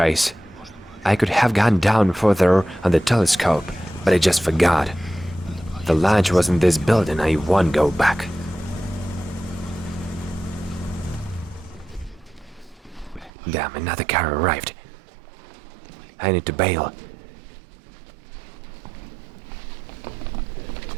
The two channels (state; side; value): drops out; left; at 13.3 s